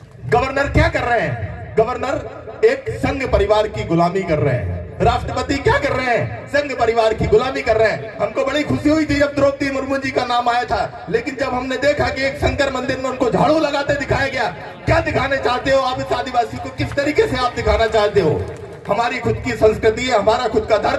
गवर्नर क्या कर रहे हैं? गवर्नर एक संघ परिवार की गुलामी कर रहे हैं। राष्ट्रपति क्या कर रहे हैं? संघ परिवार की गुलामी कर रहे हैं। हमको बड़ी खुशी हुई थी जब द्रौपदी मुर्मू जी का नाम आया था, लेकिन जब हमने देखा कि एक शंकर मंदिर में उनको झाड़ू लगाते दिखाया गया, क्या दिखाने चाहते हो आप इस आदिवासी को? किस तरीके से आप दिखाना चाहते हो? हमारी खुद की संस्कृति है, हमारा खुद का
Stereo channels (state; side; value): identical; both; correlation 1.00